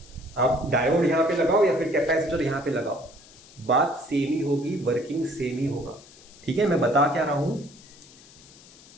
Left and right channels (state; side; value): noise; left; hiss, 23 dB below the sound